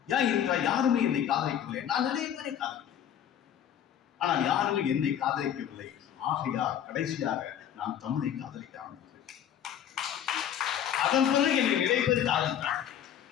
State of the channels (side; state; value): right; quieter; 9.7 dB